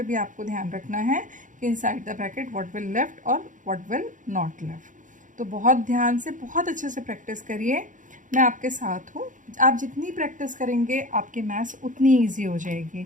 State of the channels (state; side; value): late; left; 0.37 ms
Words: भी आपको ध्यान रखना है कि inside the bracket what will left और व्हाट विल नॉट लेफ्ट। तो बहुत ध्यान से बहुत अच्छे से प्रैक्टिस करिए, मैं आपके साथ हूँ। आप जितनी प्रैक्टिस करेंगे आपकी मैथ्स उतनी ईजी हो